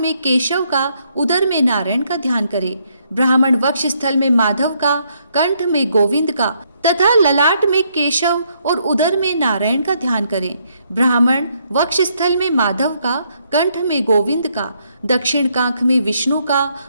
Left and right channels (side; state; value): both; inverted; correlation -0.73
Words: केशव का, उदर में नारायण का ध्यान करे। ब्राह्मण वक्ष स्थल में माधव का, कंठ में गोविंद का तथा ललाट में केशव और उदर में नारायण का ध्यान करें। ब्राह्मण वक्ष स्थल में माधव का, कंठ में गोविंद का, दक्षिण कांख में विष्णु का,